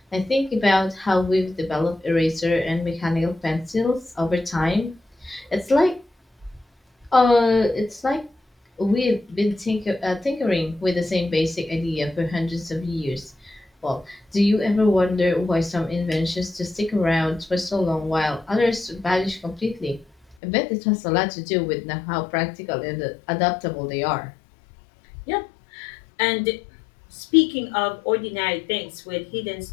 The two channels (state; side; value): drops out; right; at 20.4 s